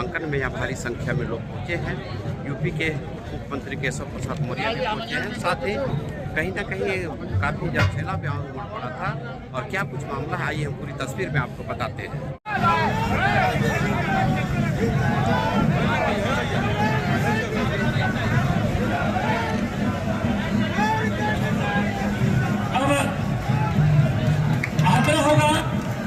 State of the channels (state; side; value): identical; both; correlation 1.00